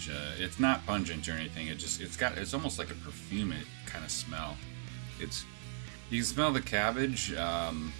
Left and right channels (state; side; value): silent; left; 53 dB below the other